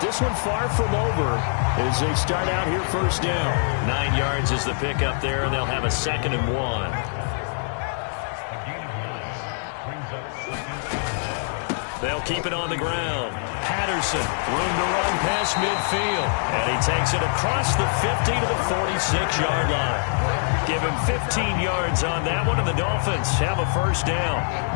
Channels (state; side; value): silent; right; digital silence